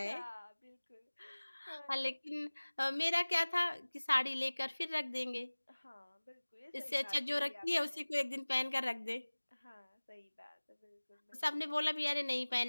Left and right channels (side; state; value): both; inverted; correlation -1.00